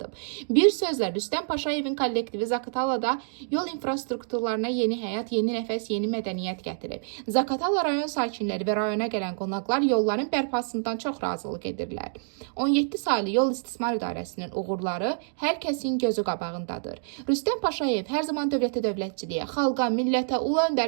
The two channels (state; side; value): silent; left; digital silence